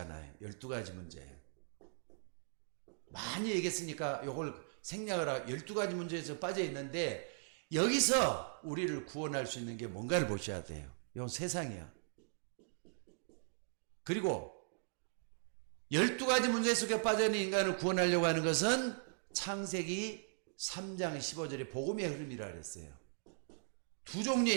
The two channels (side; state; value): left; silent; digital silence